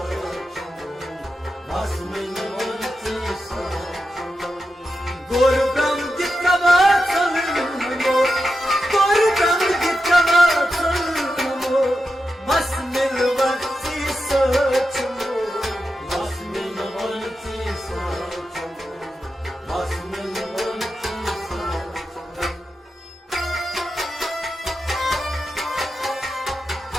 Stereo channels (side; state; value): both; normal; correlation 0.89